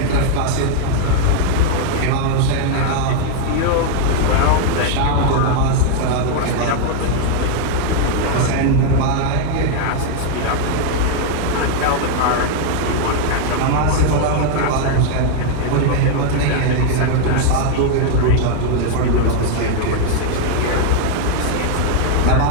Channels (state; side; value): different; both; correlation 0.00